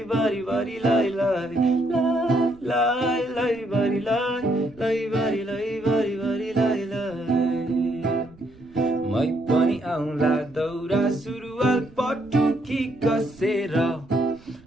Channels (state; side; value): noise; right; rumble, 26 dB below the sound